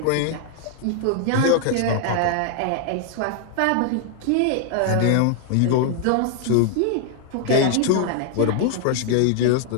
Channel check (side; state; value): both; different; correlation 0.00